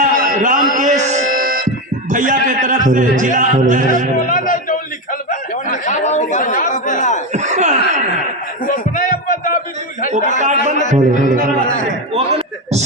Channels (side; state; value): both; normal; correlation 0.12